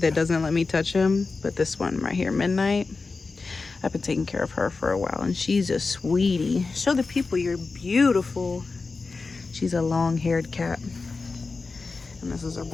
that doesn't let me touch him, but this one right here, Midnight, I've been taking care of her for a while, and she's a sweetie. Show the people you're beautiful. She's a long-haired cat. And this is her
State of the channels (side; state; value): right; quieter; 4.1 dB